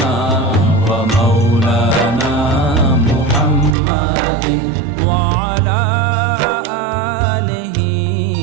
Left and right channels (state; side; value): drops out; left; at 3.8 s